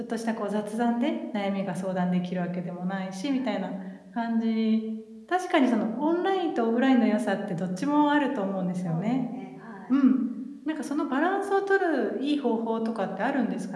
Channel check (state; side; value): identical; both; correlation 1.00